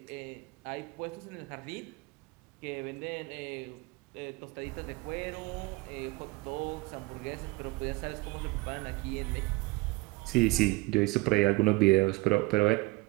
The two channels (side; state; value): left; quieter; 24.0 dB